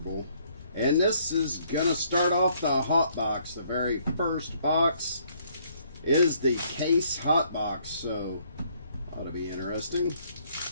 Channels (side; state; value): both; inverted; correlation -0.66